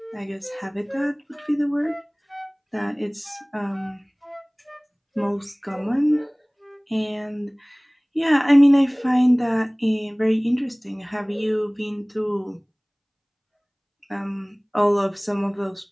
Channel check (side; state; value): both; identical; correlation 1.00